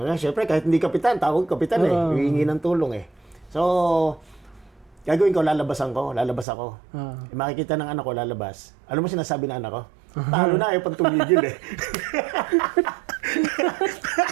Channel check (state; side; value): drops out; left; at 6.5 s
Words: Siyempre, kahit hindi kapitan, tawag kapitan hihingi ng tulong eh. So, gagawin ko, lalabas ako. Makikita ng anak ko, lalabas. Alam mo sinasabi ng anak ko? Talo na, ayaw pang tumigil eh.